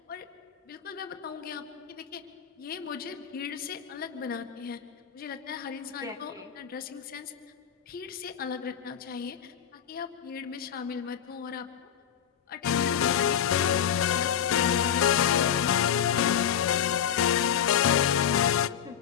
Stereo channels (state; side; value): quieter; right; 8.8 dB